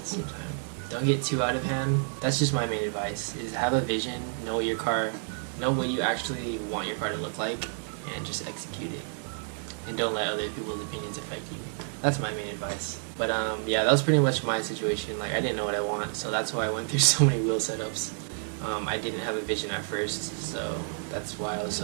same time. Don't get too out of hand. That's just my main advice: is have a vision, know what you actually want your car to look like, and just execute it. And don't let other people's opinions affect you. That's my main advice. But yeah, that was pretty much my situation. Like I didn't know what I want, so that's why I went through so many wheel setups. I didn't have a vision at first, so that's why I was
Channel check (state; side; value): silent; left; 58 dB below the other